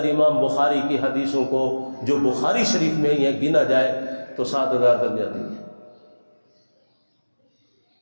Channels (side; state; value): both; inverted; correlation -1.00